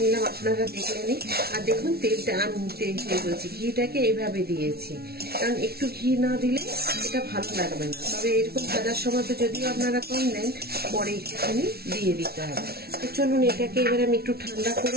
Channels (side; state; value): left; late; 0.45 ms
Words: আপনারা দেখলেনই। আর দেখুন তেলটা আমি বলছি ঘিটাকে এইভাবে দিয়েছি, কারণ একটু ঘি না দিলে এটা ভালো লাগবে না। তবে এরকম ভাজার সময় তো যদিও আপনারা কম দেন, পরে একটুখানি দিয়ে দিতে হবে। তো চলুন এটাকে এবার আমি একটু ঠান্ডা